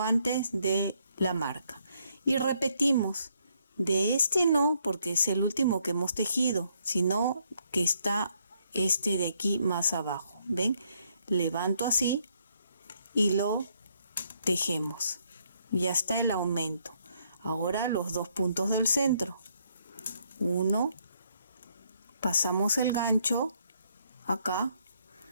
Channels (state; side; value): inverted; both; correlation -0.72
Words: de la marca. Y repetimos. De este no, porque es el último que hemos tejido, sino que está este de aquí más abajo. ¿Ven? Levanto así y lo tejemos. Ya está el aumento. Ahora los dos puntos del centro. Uno, pasamos el gancho acá,